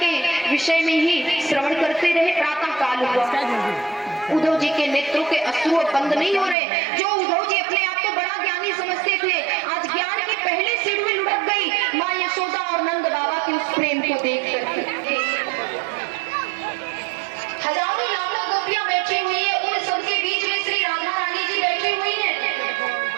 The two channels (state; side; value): drops out; left; at 6.6 s